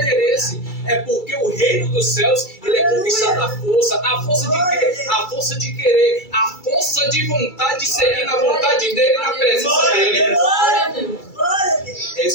É porque o reino dos céus, ele é conquistado à força. A força de quê? A força de querer. A força de vontade de seguir na vontade dele, na presença dele. É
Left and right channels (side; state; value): right; late; 2.3 ms